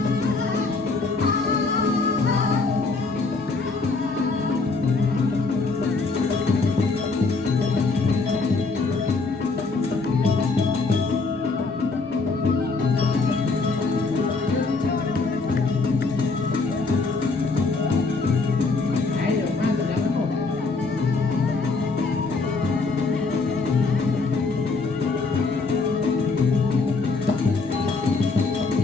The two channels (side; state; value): right; quieter; 3.9 dB